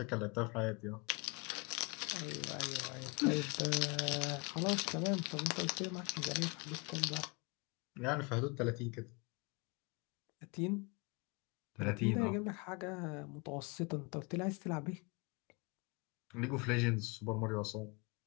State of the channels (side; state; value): right; quieter; 30.0 dB